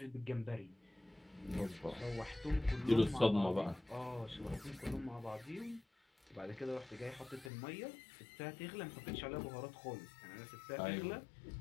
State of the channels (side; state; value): right; drops out; at 7.5 s